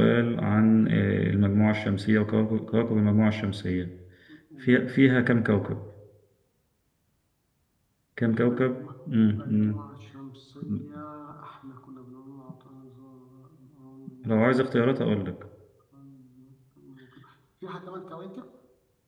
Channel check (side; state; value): both; identical; correlation 1.00